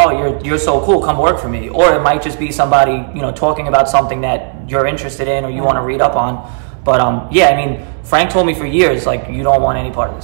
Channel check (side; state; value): left; silent; digital silence